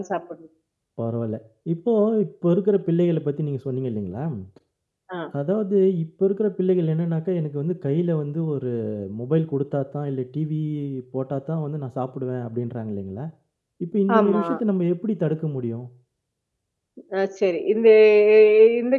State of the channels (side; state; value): both; identical; correlation 1.00